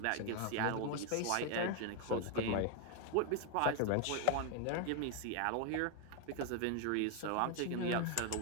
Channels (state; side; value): different; both; correlation 0.00